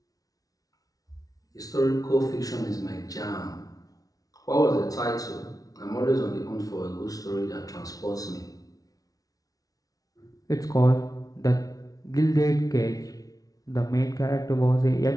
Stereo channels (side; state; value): right; late; 0.18 ms